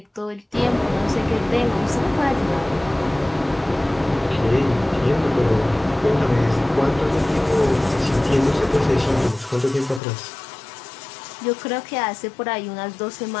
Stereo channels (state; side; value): drops out; right; at 10.0 s